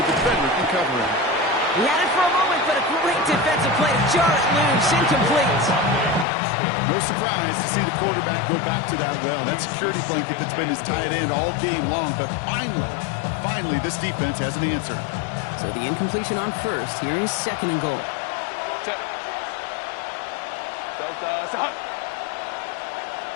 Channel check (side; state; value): right; drops out; at 6.2 s